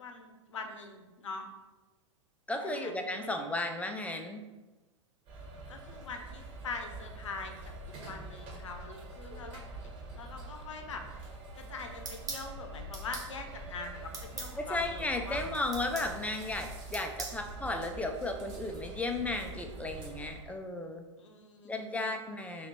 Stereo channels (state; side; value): normal; both; correlation 0.40